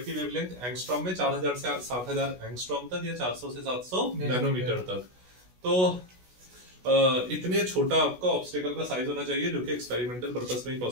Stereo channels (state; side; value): late; left; 16 ms